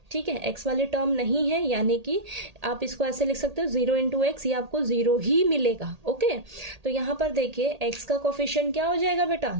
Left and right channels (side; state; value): left; late; 1.8 ms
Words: ठीक है, एक्स वाली टर्म नहीं है यानी कि आप इसको ऐसे लिख सकते हो 0 इंटू एक्स, ये आपको 0 ही मिलेगा। ओके, तो यहाँ पर देखिए एक्स का कोफिशिएंट क्या हो जाएगा बेटा